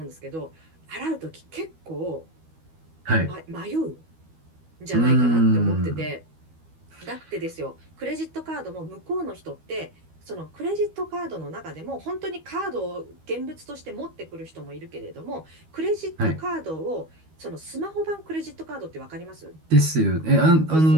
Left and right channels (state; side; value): late; left; 13 ms